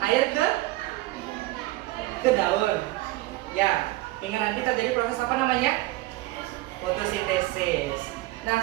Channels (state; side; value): quieter; left; 18.6 dB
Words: air ke daun. Ya, hingga nanti terjadi proses apa namanya? Fotosintesis. Nah,